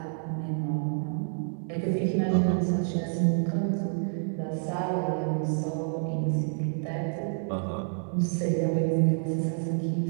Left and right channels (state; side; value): silent; left; digital silence